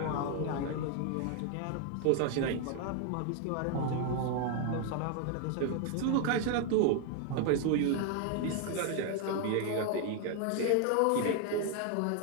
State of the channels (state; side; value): different; both; correlation 0.00